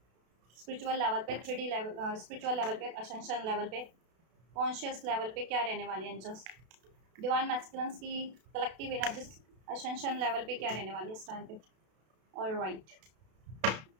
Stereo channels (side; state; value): left; late; 32 ms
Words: स्पिरिचुअल लेवल पे, 3D लेवल, स्पिरिचुअल लेवल पे, असेंशन लेवल पे, कॉन्शियस लेवल पे क्या रहने वाली है एंजल्स। डिवाइन मैस्कुलिन की कलेक्टिव एनर्जीज असेंशन लेवल पे क्या रहने वाली है इस टाइम पे। और राइट,